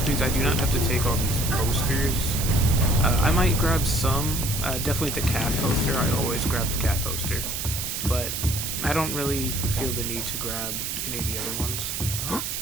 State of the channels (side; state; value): right; noise; hiss, 3 dB below the sound